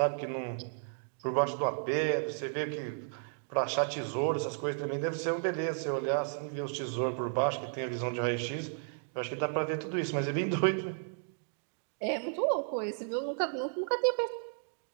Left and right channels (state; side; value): silent; left; digital silence